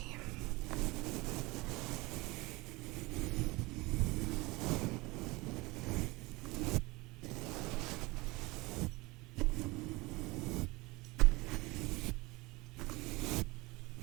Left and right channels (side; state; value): left; quieter; 23.0 dB